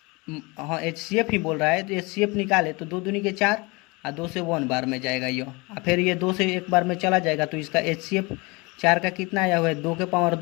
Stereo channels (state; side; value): quieter; right; 26.2 dB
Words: हाँ एचसीएफ ही बोल रहा है, तो एचसीएफ निकाले तो 2 दूनी के 4 और 2 से 1 बार में जाएगा ये, और फिर ये 2 से 1 बार में चला जाएगा। तो इसका एचसीएफ 4 का कितना आया हुआ है? 2 के पावर